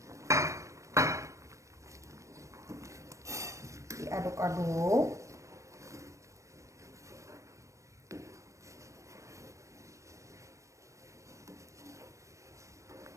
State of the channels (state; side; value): late; left; 0.15 ms